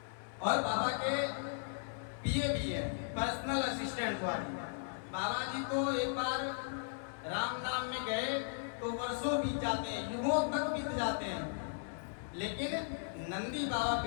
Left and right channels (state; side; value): silent; right; 53 dB below the other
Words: और बाबा के पीए भी है, पर्सनल असिस्टेंट वाली। बाबा जी तो एक बार राम नाम में गए तो वर्षों बीत जाते हैं, युगों तक बीत जाते हैं, लेकिन नंदी बाबा